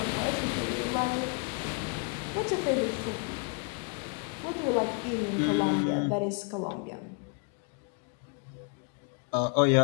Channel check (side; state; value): right; quieter; 36.1 dB